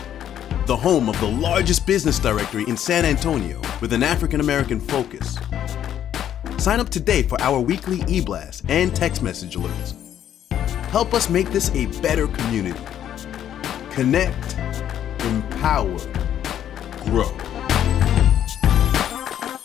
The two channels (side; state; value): right; quieter; 10.4 dB